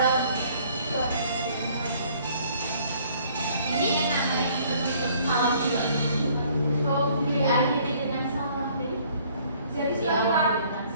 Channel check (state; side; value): inverted; both; correlation -0.59